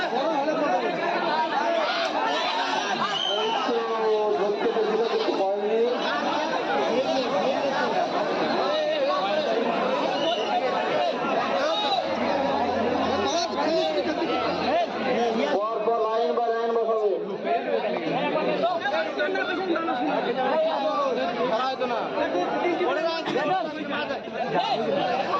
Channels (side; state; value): both; identical; correlation 1.00